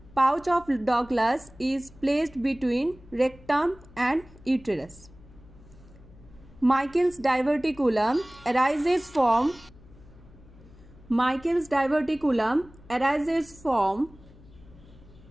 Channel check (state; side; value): noise; left; hum, 23 dB below the sound